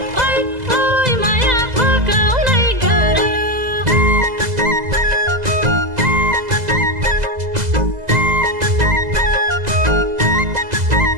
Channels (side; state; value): left; late; 2.0 ms